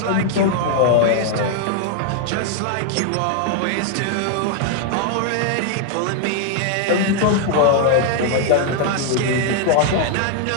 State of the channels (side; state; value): both; different; correlation 0.00